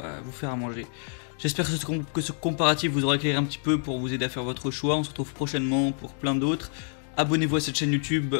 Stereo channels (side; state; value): right; silent; 60 dB below the other